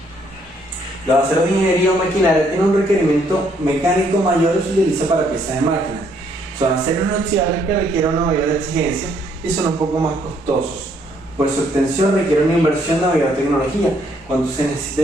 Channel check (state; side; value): normal; both; correlation 0.68